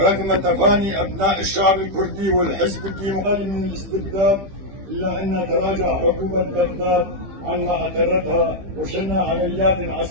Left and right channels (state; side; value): late; left; 15 ms